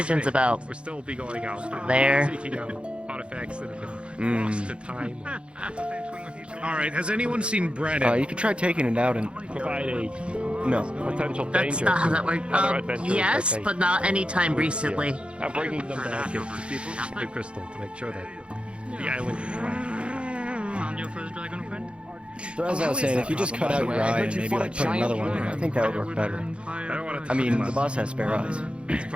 about We'll still be going out there. seeking out artifacts that have Mm. been lost to time. Alright, has anyone seen Brennan? You could try taking it out and... Provide a No. potential That's danger not how to that works. other adventurers Yes, that they- but not anytime recently. I'm bringing them back to the crystal to make sure that the island is right. Found your first dragon friend? So as I was saying, if you just cut out your eye and maybe like put another one in, I think that would work better. I mean, the boss has spare eyes.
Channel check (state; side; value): late; left; 0.058 ms